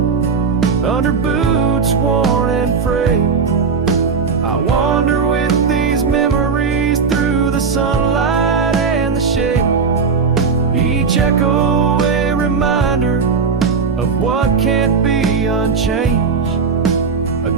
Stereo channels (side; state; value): left; quieter; 5.4 dB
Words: under boots worn and frayed, I wander with these memories through the sunlight and the shade. Each echo a reminder of what can't be unchanged. A